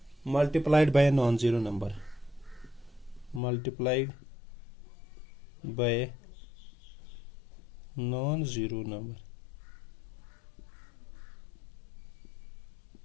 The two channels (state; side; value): drops out; right; at 3.4 s